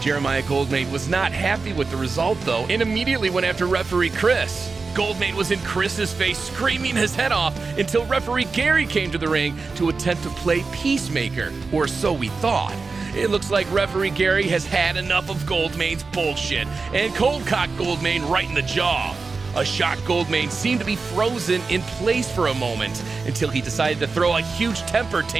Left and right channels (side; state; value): left; quieter; 4.3 dB